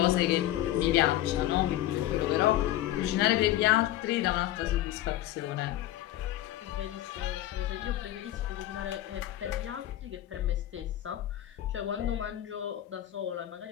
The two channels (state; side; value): quieter; right; 14.0 dB